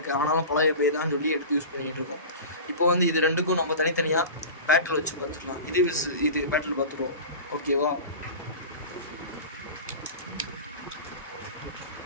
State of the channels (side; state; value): both; inverted; correlation -0.32